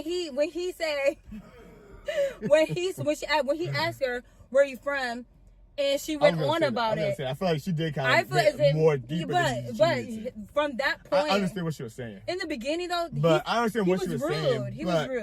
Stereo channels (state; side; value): identical; both; correlation 1.00